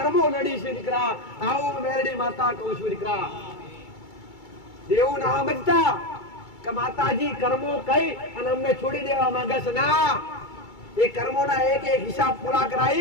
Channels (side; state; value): right; late; 2.3 ms